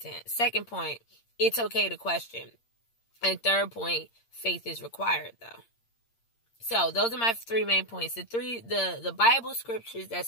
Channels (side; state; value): right; late; 8.7 ms